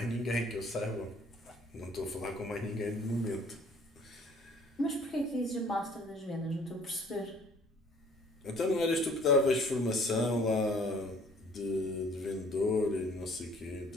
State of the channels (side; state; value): both; normal; correlation 0.56